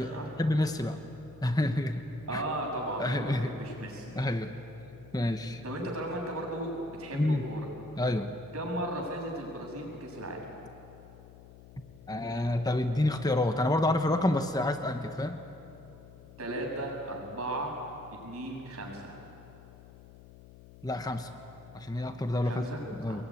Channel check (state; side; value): noise; left; hum, 19 dB below the sound